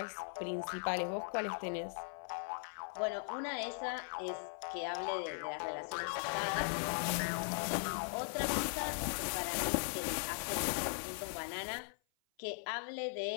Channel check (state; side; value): silent; right; 52 dB below the other